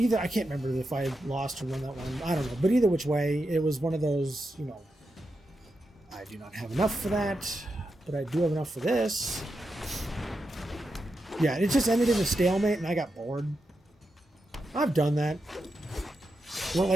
can't remember if I lost or won that one. I don't know. But either which way, it was one of those, you know, I do not have enough for that, but I do have enough for this. Yeah, it just ended in a stalemate, and I got bored. I've done that. Well,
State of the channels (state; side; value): normal; both; correlation 0.87